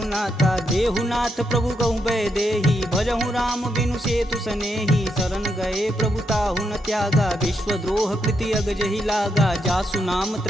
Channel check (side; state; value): both; normal; correlation 0.80